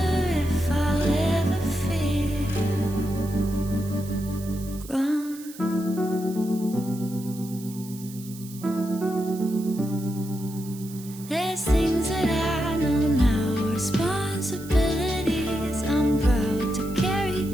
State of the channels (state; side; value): noise; right; hiss, 17 dB below the sound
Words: if I'll ever feel grown. There's things that I know now, responsibilities I'm proud to